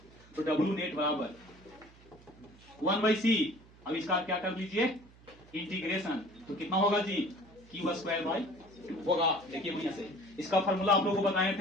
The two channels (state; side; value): noise; right; hum, 25 dB below the sound